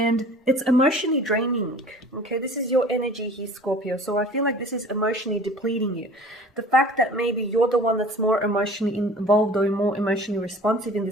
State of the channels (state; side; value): normal; both; correlation 0.45